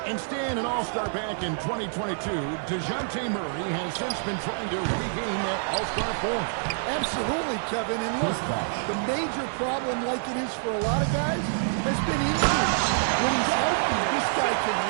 And staying an all-star back in 2022, DeJounte Murray has since been trying to regain that all-star form. Absolutely, Kevin. And look, the major problem, like it is for a lot of guys, has been injuries. When he's healthy, this guy can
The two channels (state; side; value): silent; left; digital silence